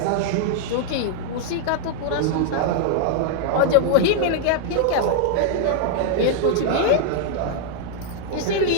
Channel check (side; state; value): both; different; correlation -0.01